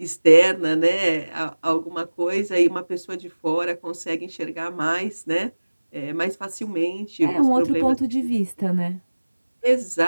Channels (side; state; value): both; inverted; correlation -1.00